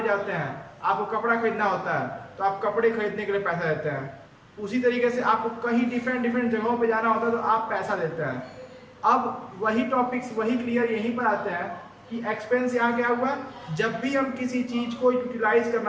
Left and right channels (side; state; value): both; identical; correlation 1.00